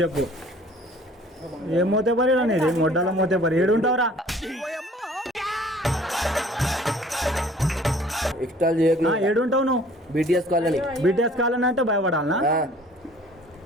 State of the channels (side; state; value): both; normal; correlation 0.52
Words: చెప్పు. ఏం మోతే పరి అనేది, మొడ్డల మోతే పరి. ఏడుంటావురా? ఎక్స్ట్రా ఏడుంటావు నువ్వు? BTS colony. BTS కాలనీ అంటే భయపడాలనా?